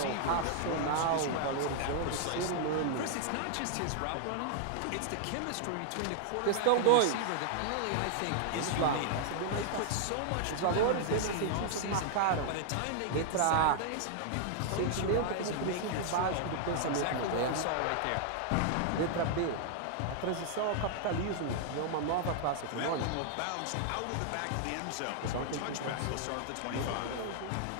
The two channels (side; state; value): both; different; correlation -0.01